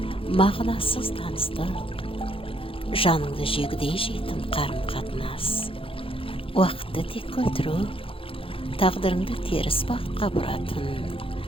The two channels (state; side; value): late; right; 0.26 ms